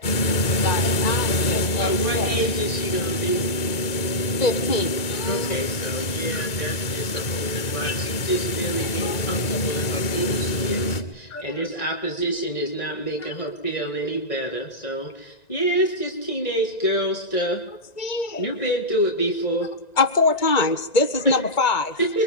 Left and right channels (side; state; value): right; late; 1.9 ms